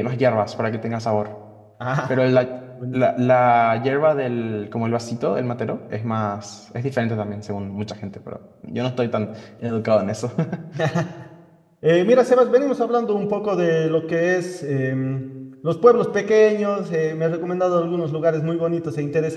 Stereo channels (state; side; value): identical; both; correlation 1.00